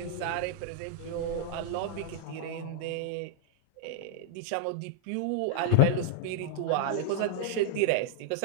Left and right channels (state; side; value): different; both; correlation -0.01